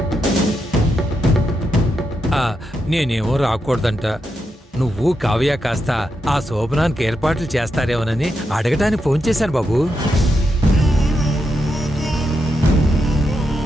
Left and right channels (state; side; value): normal; both; correlation 0.84